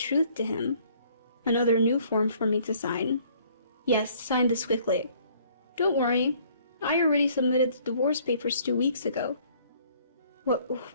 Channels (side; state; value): both; inverted; correlation -0.59